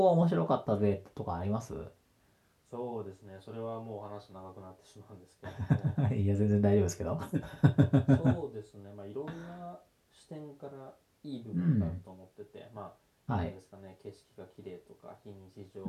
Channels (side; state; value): both; identical; correlation 1.00